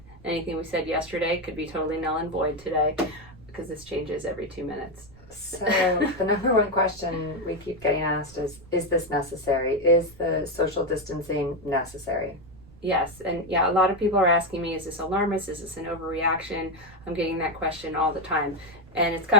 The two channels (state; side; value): noise; right; rumble, 22 dB below the sound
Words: Anything we said yesterday could be totally null and void today because this changes every 2 minutes. So the number one question we keep getting asked is this necessary? Is the social distancing necessary? Yes, and yeah, a lot of people are asking me, is this alarmist? Is this an overreaction? I'm getting that question all the time. And it's